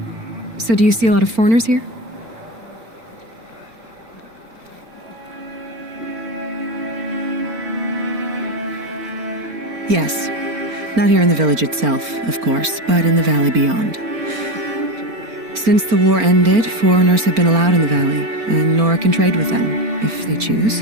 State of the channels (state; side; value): late; left; 4.4 ms